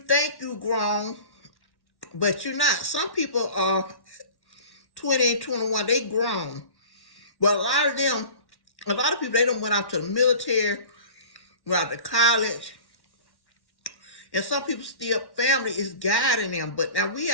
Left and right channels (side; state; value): right; late; 1.1 ms